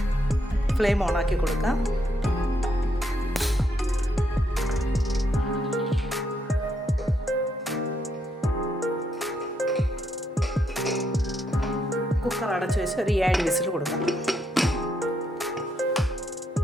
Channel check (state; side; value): normal; both; correlation 0.77